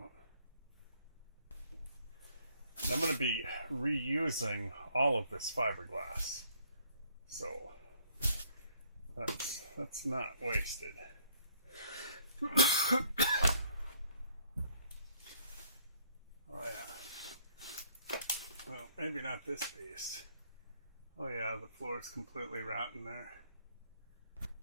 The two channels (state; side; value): inverted; both; correlation -0.65